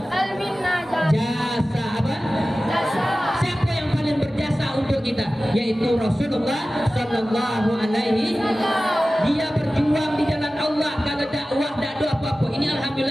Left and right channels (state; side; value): normal; both; correlation 0.96